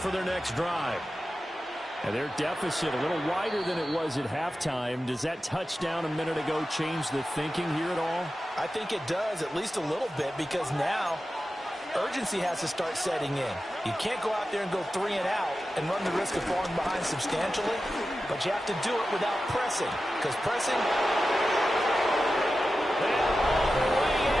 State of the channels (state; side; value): normal; both; correlation 0.93